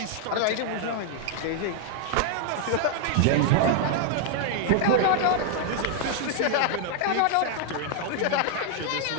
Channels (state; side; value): different; both; correlation 0.00